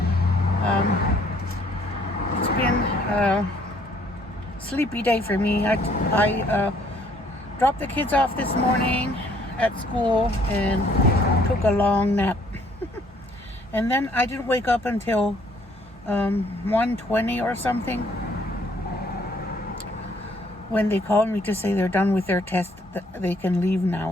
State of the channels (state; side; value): normal; both; correlation 0.63